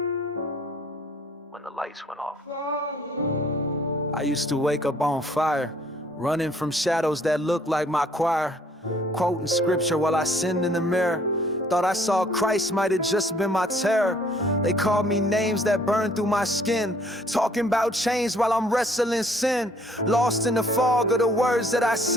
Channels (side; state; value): both; normal; correlation 0.60